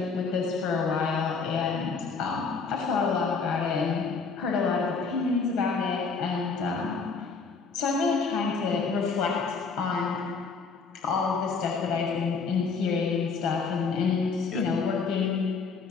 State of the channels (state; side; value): quieter; right; 4.9 dB